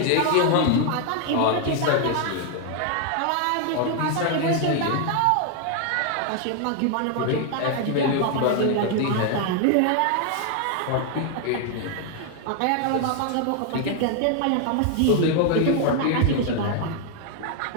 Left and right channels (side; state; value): both; different; correlation 0.00